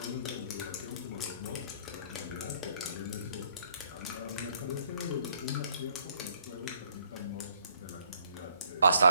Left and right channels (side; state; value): both; inverted; correlation -0.65